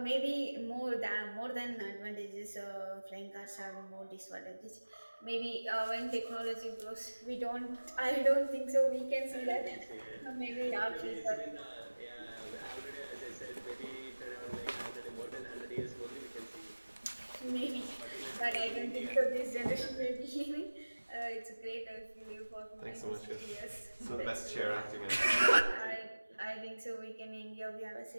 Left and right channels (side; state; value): both; inverted; correlation -1.00